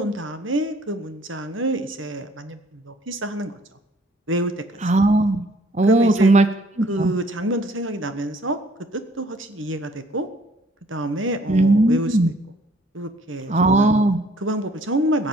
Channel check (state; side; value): normal; both; correlation 0.60